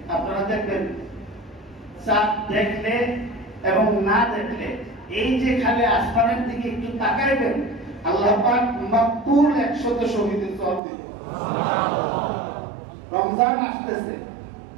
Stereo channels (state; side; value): drops out; left; at 10.8 s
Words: আপনারা দেখবেন চাঁদ দেখলে এবং না দেখলে এই যে খালি আসমানের দিকে একটু তাকাইবেন, আল্লাহ পাক মাকবুল 100 শহীদের সওয়াব দিবেন। রমজান আসতেছে,